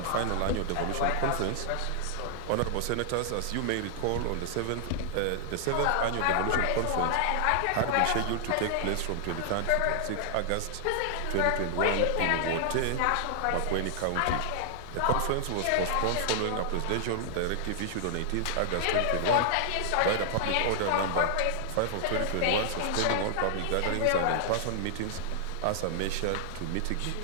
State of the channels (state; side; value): different; both; correlation -0.01